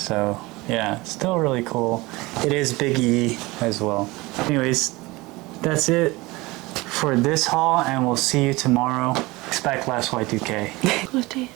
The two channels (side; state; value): left; quieter; 22.0 dB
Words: yeah, still really cool. It is Big E as well. Anyways, that's it for this haul, and we'll see you tomorrow. Expect less Y2K. What day